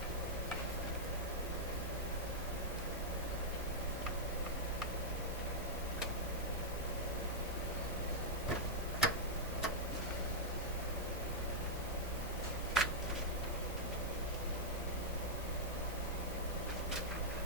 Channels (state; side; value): normal; both; correlation -0.08